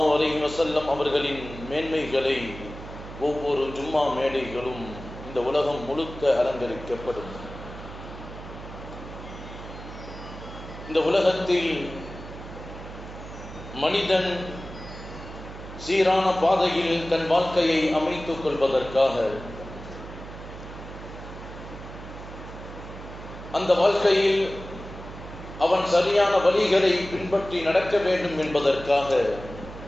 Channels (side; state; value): right; noise; hum, 13 dB below the sound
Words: அலைஹி வஸல்லம் அவர்களின் மேன்மைகளை ஒவ்வொரு ஜும்மா மேடைகளும் இந்த உலகம் முழுக்க அலங்கரிக்கப்படும். இந்த உலகத்தில் மனிதன் சீரான பாதையில் தன் வாழ்க்கையை அமைத்துக் கொள்வதற்காக, அந்த வாழ்க்கையில் அவன் சரியான வழிகளை பின்பற்றி நடக்க வேண்டும் என்பதற்காக